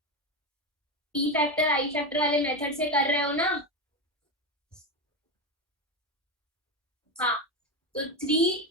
पी फैक्टर आई फैक्टर वाले मेथड से कर रहे हो ना. हाँ, तो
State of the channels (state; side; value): normal; both; correlation 0.15